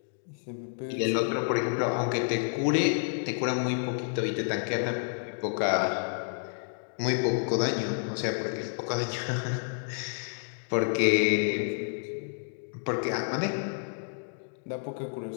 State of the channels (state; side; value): silent; right; digital silence